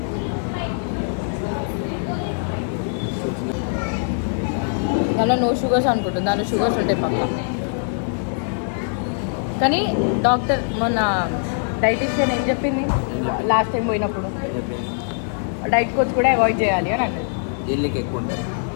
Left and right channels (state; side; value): silent; right; 64 dB below the other